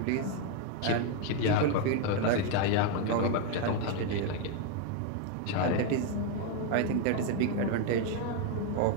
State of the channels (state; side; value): different; both; correlation 0.01